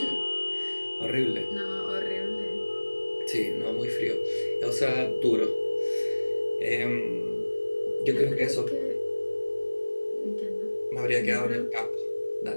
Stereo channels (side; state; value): both; inverted; correlation -1.00